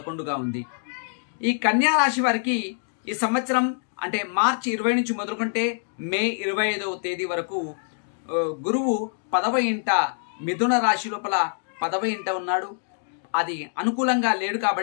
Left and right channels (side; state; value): right; silent; digital silence